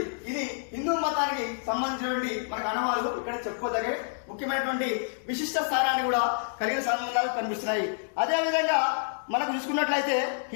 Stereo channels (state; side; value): silent; right; digital silence